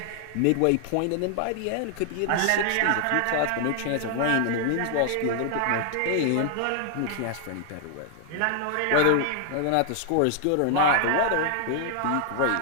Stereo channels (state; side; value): different; both; correlation 0.00